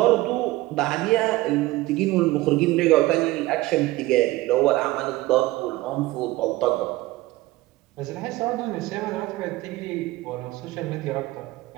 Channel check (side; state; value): left; quieter; 18.5 dB